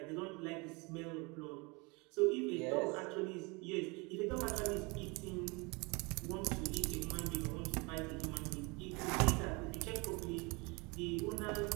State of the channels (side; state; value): left; quieter; 27.9 dB